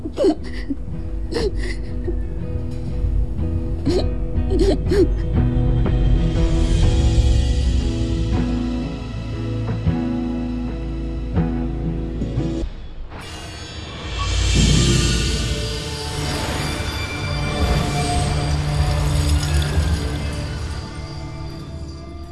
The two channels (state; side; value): identical; both; correlation 1.00